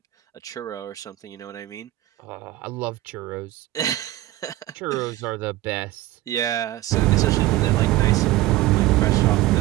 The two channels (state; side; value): quieter; left; 16.5 dB